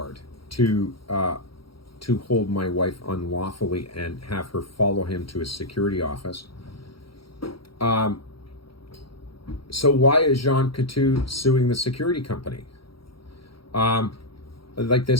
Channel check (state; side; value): late; right; 0.74 ms